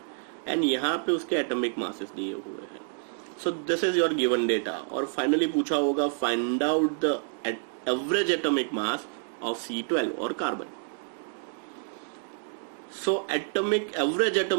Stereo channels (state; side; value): silent; left; 59 dB below the other